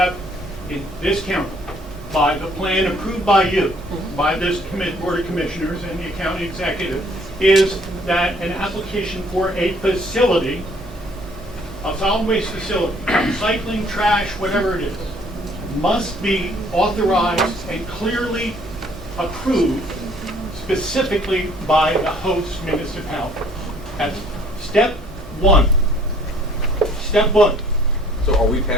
in this county, by the plan approved by you, by this Board of Commissioners and the county executive, is that an application for a facility, a solid waste facility, recycling, trash, whatever it is, must be authorized and clearly approved specifically by the host municipality. That's step 1. Step 1. So are we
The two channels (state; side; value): normal; both; correlation 0.59